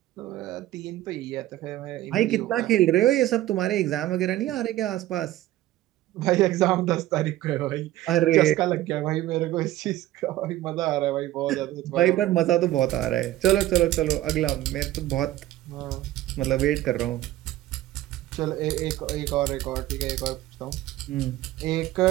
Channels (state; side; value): quieter; left; 15.1 dB